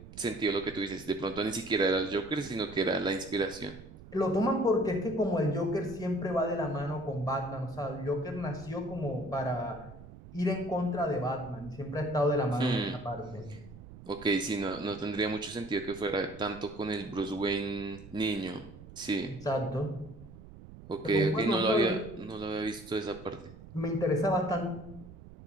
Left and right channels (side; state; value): right; noise; rumble, 17 dB below the sound